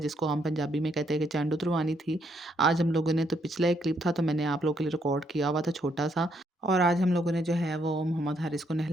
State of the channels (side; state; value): both; normal; correlation 0.73